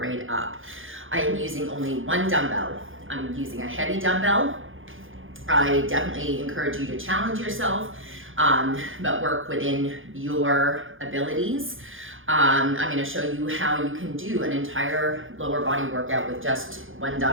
up. I am using only 1 dumbbell. I'm using a heavy dumbbell. I definitely encourage you to challenge yourself, but work within your abilities. I'm going to show you how you can do an entire lower body workout with just 1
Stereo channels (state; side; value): late; left; 0.58 ms